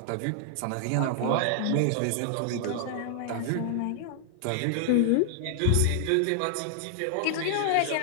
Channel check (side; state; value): both; different; correlation 0.00